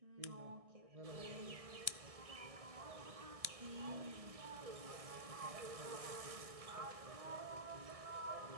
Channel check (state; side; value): late; left; 1.6 ms